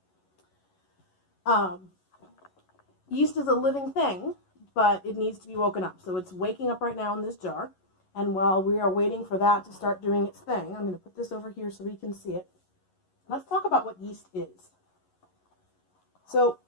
Yeast is a living thing, but it needs to be woken up. So it's waking up right now in this jar, and while we are waiting for that to start doing its thing, I'm going to put this over here so we can see it. Let's talk about what yeast is. So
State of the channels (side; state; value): right; late; 11 ms